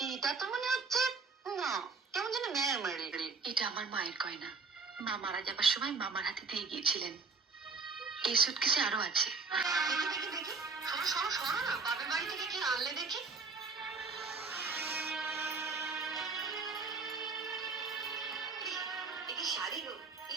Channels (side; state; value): left; quieter; 4.4 dB